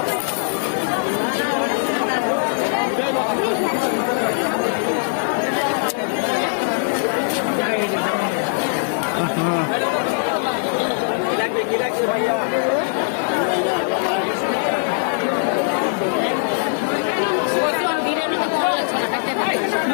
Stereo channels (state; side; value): silent; right; digital silence